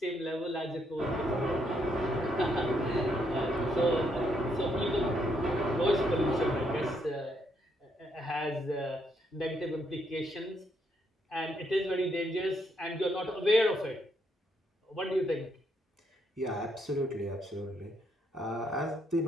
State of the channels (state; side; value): normal; both; correlation 0.75